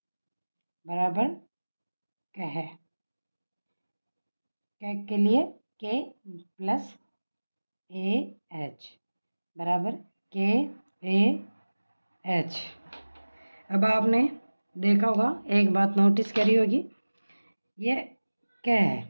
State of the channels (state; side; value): inverted; both; correlation -1.00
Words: बराबर कह। कै के लिए के प्लस ए एच बराबर के ए एच। अब आपने देखा होगा, एक बात नोटिस करी होगी, ये क्या है,